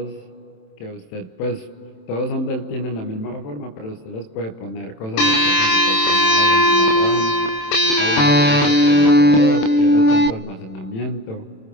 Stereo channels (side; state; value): right; late; 27 ms